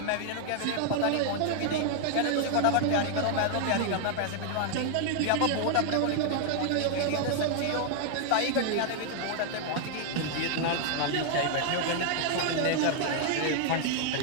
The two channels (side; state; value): both; different; correlation 0.00